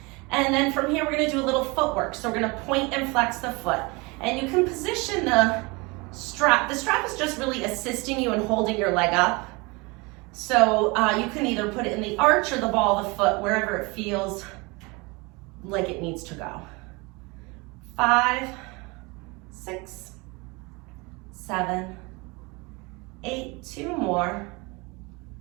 And then from here, we're gonna do a little footwork. So we're gonna point and flex the foot. And you can position the strap. The strap is just really assisting you in holding your leg up. So you can either put it in the arch or the ball of the foot, wherever it feels like it needs to go. 5, 6, 7, 8, 2 more,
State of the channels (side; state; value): left; quieter; 26.5 dB